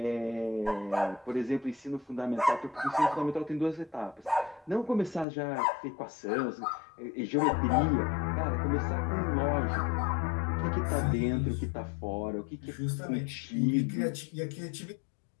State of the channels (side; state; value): right; drops out; at 5.2 s